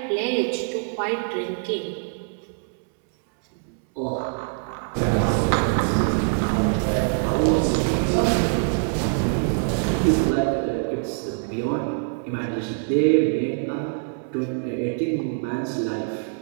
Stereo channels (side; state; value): left; silent; 63 dB below the other